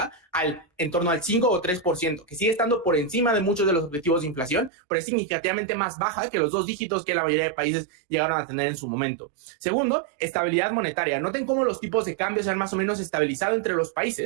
en torno al 5 o 3%, que sigue estando por encima de muchos de los objetivos de inflación, pero es significativo significativamente más baja que los 2 dígitos que la mayoría de países llegaron a tener en su momento. Segundo, estabilidad monetaria. Noten cómo los tipos de cambio se han más o menos estabilizado entre los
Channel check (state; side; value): drops out; left; at 4.7 s